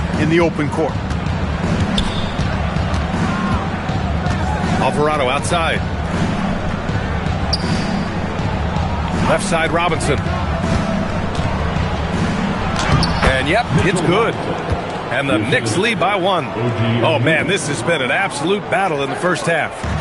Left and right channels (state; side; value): identical; both; correlation 1.00